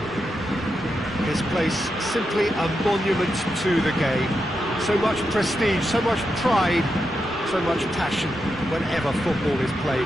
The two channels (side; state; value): both; normal; correlation 0.86